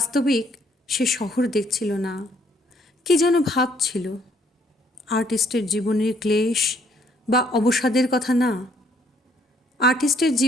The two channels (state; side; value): normal; both; correlation 0.65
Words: সে শহর দেখছিল না, কি যেন ভাবছিল। আর্টিস্টের জীবনের ক্লেশ বা অবসাদের কথা না, আর্টিস্টের